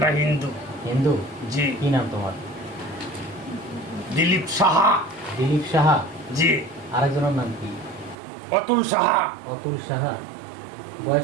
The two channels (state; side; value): drops out; left; at 8.2 s